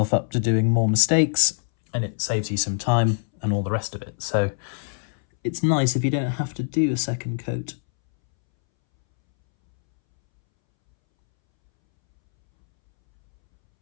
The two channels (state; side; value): silent; right; 63 dB below the other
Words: up to doing more mistakes and it saves you some time and all the rest of it. So it's nice if you don't have to do a second coat.